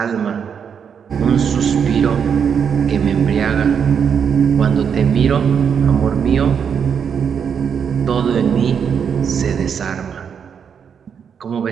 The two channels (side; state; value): left; quieter; 7.2 dB